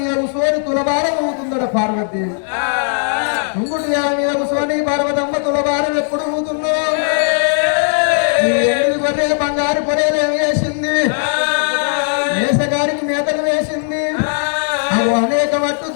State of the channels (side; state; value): right; silent; digital silence